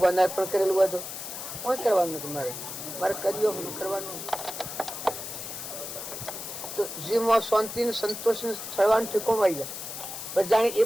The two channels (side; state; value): left; noise; hiss, 8 dB below the sound